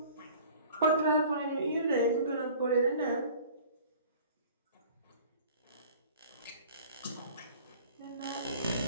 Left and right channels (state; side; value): inverted; both; correlation -0.47